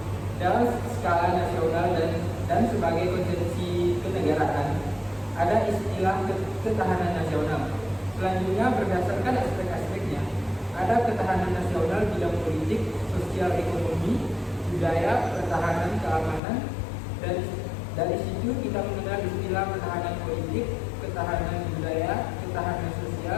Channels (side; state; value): right; drops out; at 16.4 s